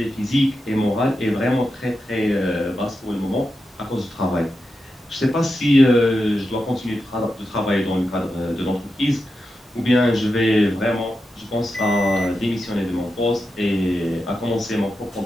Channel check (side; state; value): both; normal; correlation 0.89